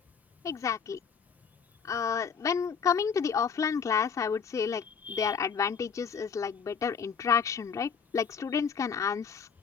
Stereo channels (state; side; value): quieter; right; 6.4 dB